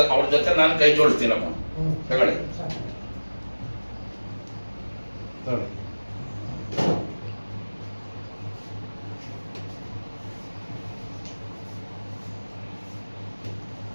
ಅವ್ರ ಜೊತೆ ನಾನು ಕೈ ಜೋಡಿಸ್ತೀನಪ್ಪ. ತಗೊಳ್ಳಿ.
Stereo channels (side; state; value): both; inverted; correlation -1.00